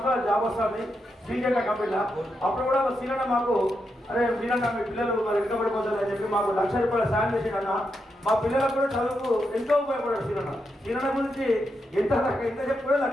జాబ్ వస్తుంది శ్రీజంగా కంపెనీలో. అప్పుడు కూడా సీనన్న మాకు అరే మీరన్నా మీ పిల్లలు మరి వెనుకబడిపోతారు అని చెప్పి మాకు ₹1,00,000 సాయం చేసిండన్న. మా పిల్లలకు కూడా చదువుకు ఎంతో ఉపయోగపడారు సీనన్న. సీనన్న గురించి ఎంత చెప్పుకోవడం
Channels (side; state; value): both; normal; correlation 0.84